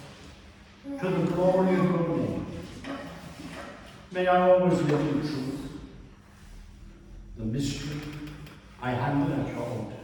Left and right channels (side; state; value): both; identical; correlation 1.00